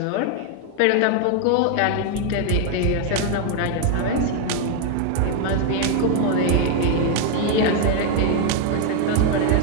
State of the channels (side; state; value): both; different; correlation 0.00